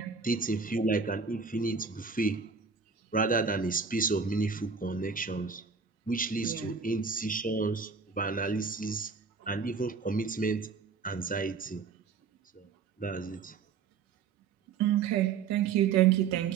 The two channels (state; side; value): quieter; left; 5.5 dB